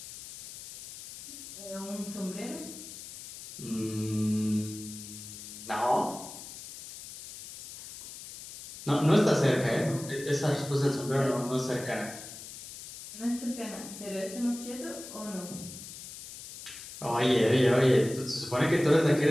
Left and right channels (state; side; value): noise; left; hiss, 13 dB below the sound